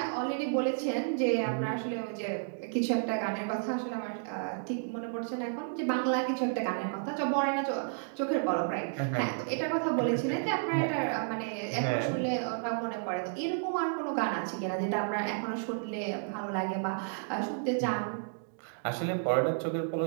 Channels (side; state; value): left; silent; digital silence